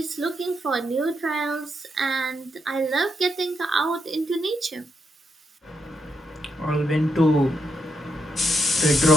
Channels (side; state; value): both; normal; correlation 0.80